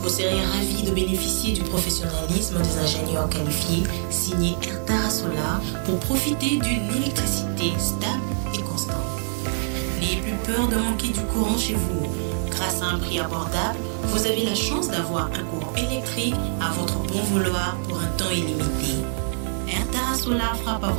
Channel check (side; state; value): left; silent; 57 dB below the other